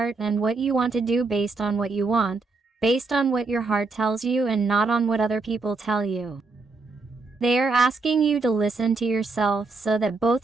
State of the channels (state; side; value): quieter; left; 3.8 dB